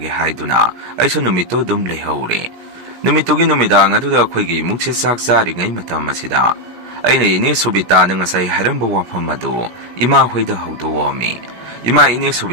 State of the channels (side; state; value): left; late; 17 ms